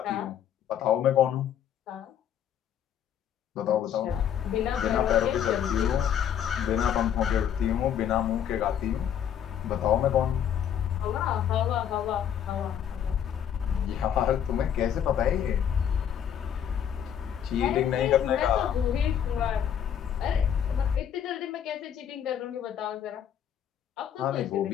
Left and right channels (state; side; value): quieter; right; 9.2 dB